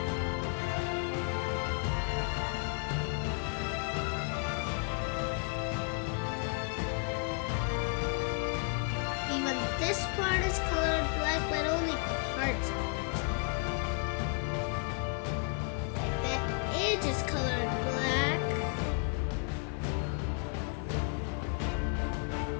Even this part is colored black, but only parts of it. Edge is colored black.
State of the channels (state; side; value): quieter; right; 38.7 dB